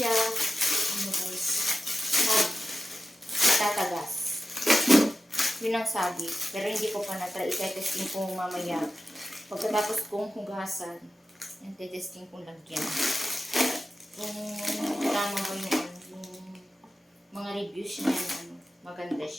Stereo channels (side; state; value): both; normal; correlation 0.93